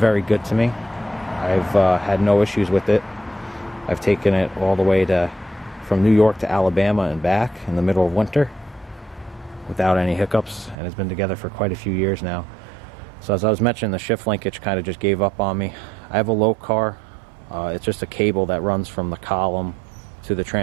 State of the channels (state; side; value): drops out; left; at 10.8 s